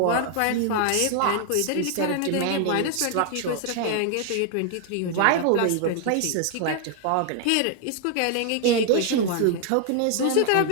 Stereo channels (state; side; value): different; both; correlation 0.00